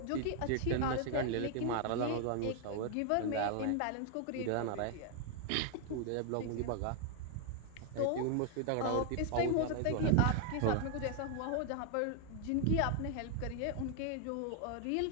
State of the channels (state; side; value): different; both; correlation 0.00